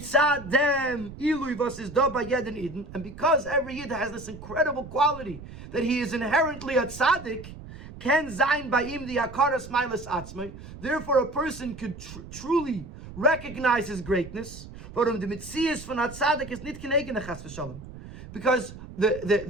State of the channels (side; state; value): right; noise; rumble, 14 dB below the sound